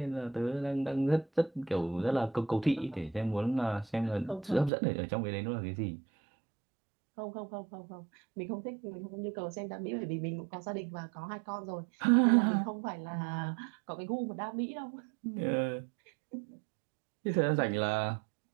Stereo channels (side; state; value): left; drops out; at 4.7 s